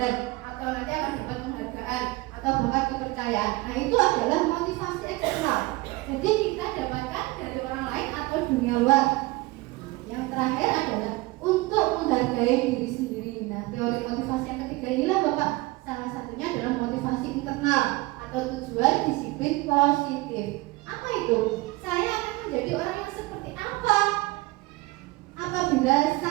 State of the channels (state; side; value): quieter; left; 21.2 dB